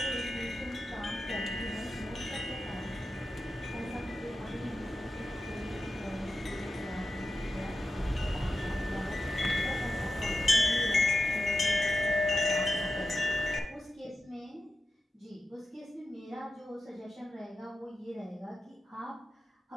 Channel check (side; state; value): both; normal; correlation 0.92